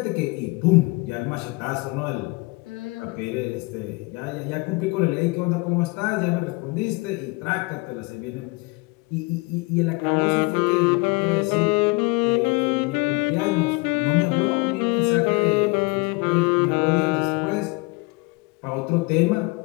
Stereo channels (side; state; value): right; quieter; 26.3 dB